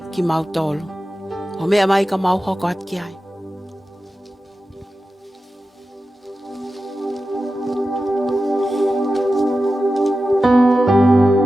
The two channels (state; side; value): normal; both; correlation 0.93